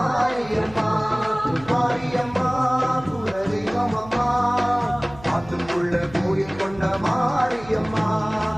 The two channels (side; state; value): right; noise; hum, 19 dB below the sound